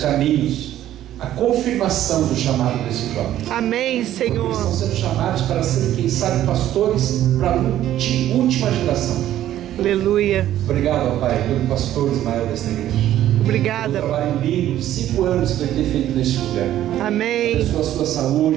a confirmação do chamado desses jovens. Amém, Senhor. Porque eles estão sendo chamados para serem, quem sabe, pastores para a última geração. Aleluia. Obrigado, ó Pai, pelo pastor Ismael desta igreja. Obrigada. Um trabalho lindo de 5 anos que vai ter feito neste lugar. Amém. Abençoa a sua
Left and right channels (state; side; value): quieter; left; 12.5 dB